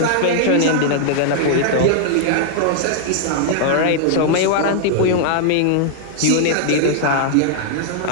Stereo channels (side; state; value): both; different; correlation -0.01